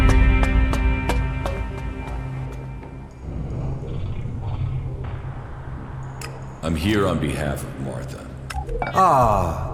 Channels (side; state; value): both; identical; correlation 1.00